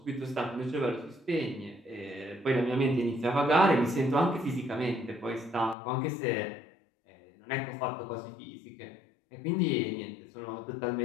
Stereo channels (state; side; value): drops out; right; at 5.8 s